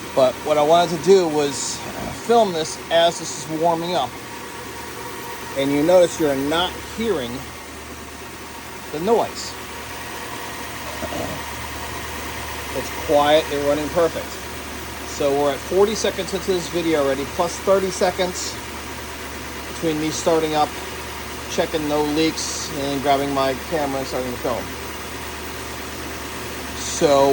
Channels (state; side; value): identical; both; correlation 1.00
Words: But what I wanted to do was film this as this is warming up. And you notice you're not hearing the noise. It's quiet, they're running perfect. So we're at 40 seconds into this video already, plus 30 seconds between me starting up, checking no leaks, and then grabbing my camera and starting to film.